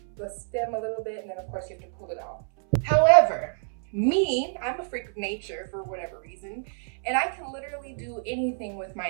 the stem a little bit, and then of course you have to pull it out. However, I'm a freak of nature for whatever reason, and I can literally do anything with my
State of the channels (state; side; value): silent; left; 60 dB below the other